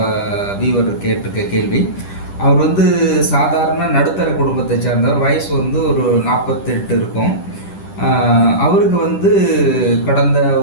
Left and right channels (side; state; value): right; late; 10 ms